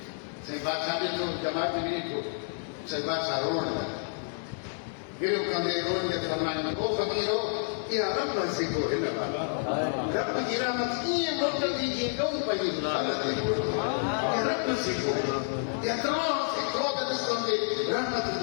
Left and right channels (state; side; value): silent; right; digital silence